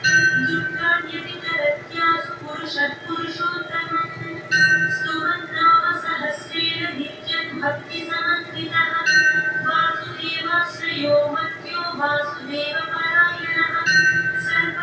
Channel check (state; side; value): identical; both; correlation 1.00